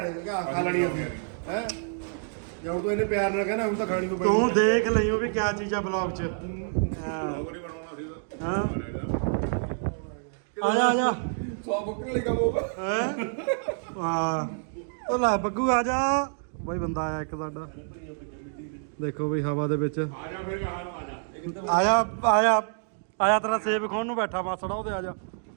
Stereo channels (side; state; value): left; silent; digital silence